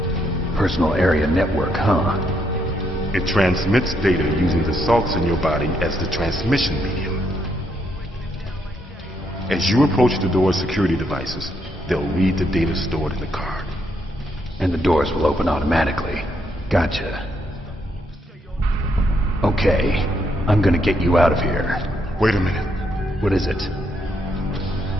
Personal area network, huh? It transmits data using the salts in your body as the transmission medium. As you approach the door's security devices, they'll read the data stored in the card. And the doors will open automatically. Gotcha. Okay, I'm gonna get you out of here. Wait a minute. What is it?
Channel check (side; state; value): both; normal; correlation 0.76